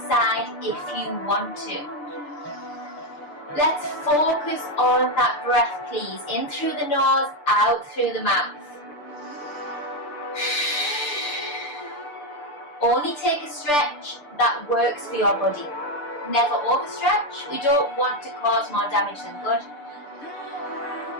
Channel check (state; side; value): late; right; 6.8 ms